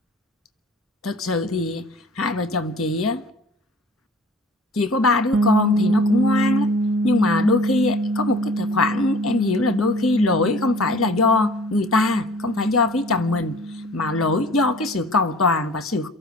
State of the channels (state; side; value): normal; both; correlation 0.47